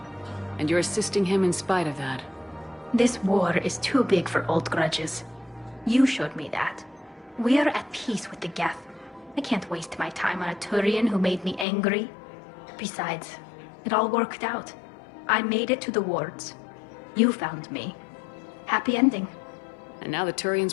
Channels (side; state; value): right; drops out; at 11.7 s